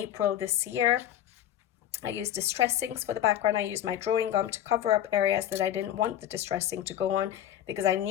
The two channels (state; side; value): quieter; right; 11.4 dB